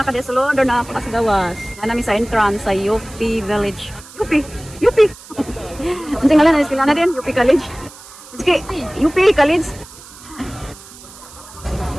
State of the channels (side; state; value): right; noise; hiss, 19 dB below the sound